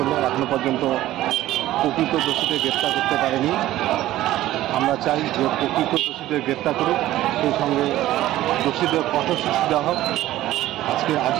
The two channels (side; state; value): left; quieter; 14.9 dB